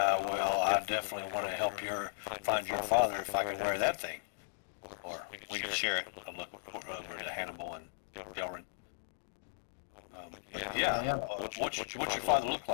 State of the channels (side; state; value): right; silent; digital silence